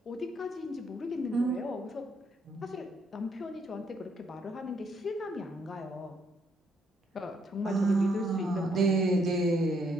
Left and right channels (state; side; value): normal; both; correlation 0.72